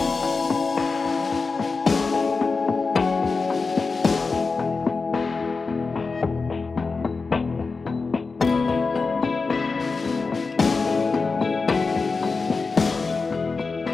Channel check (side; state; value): right; quieter; 4.3 dB